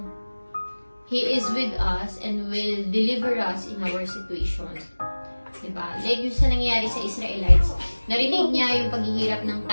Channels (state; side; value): inverted; both; correlation -1.00